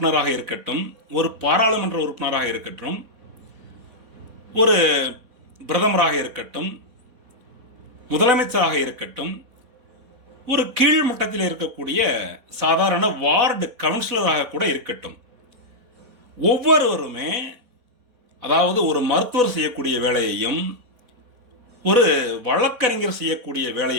இருக்கட்டும், ஒரு பாராளுமன்ற உறுப்பினராக இருக்கட்டும், ஒரு பிரதமராக இருக்கட்டும், முதலமைச்சராக இருக்கட்டும், ஒரு கீழ்மட்டத்தில் இருக்கக்கூடிய சாதாரண வார்டு கவுன்சிலராக கூட இருக்கட்டும், ஒவ்வொருவருமே, அதாவது ஒரு மருத்துவர் செய்யக்கூடிய வேலையையும் ஒரு வழக்கறிஞர் செய்யக்கூடிய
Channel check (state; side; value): late; left; 4.1 ms